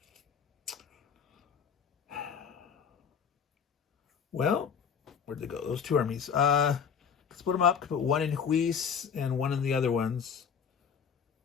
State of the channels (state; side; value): quieter; right; 6.9 dB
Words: Well, where'd they go? Those 2 armies. Split them up. Put 1 in Huis and 1 in the other ones.